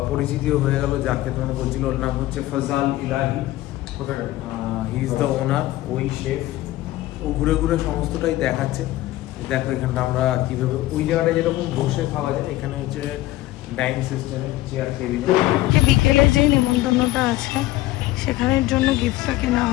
পরিচিতিও হয়ে গেল। যাকে তোমরা বলছিল, ওর নাম হচ্ছে ফজাল ইলাহি, হি ইজ দ্য ওনার, ওই শেফ। ও ঘুরে ঘুরে সমস্তটাই দেখাচ্ছে। দেখো এখানটা আমরা কিভাবে, ওই জায়গাটা যেরকম বসে খাওয়া যায়, এখানে হচ্ছে ডাইনিং সিস্টেমে চেয়ার টেবিলে। বিকেলে যে নিমন্ত্রণটা আছে সেখানের জন্য গিফটটা কেনা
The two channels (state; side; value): quieter; right; 16.3 dB